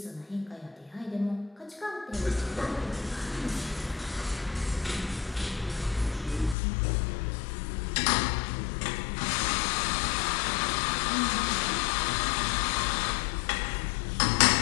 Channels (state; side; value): drops out; right; at 6.6 s